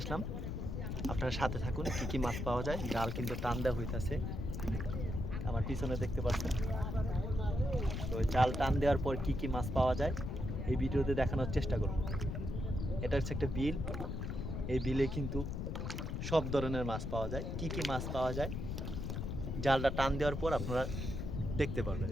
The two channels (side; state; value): left; noise; rumble, 3 dB below the sound